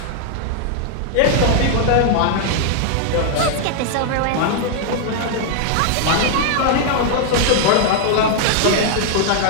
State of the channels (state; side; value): different; both; correlation -0.01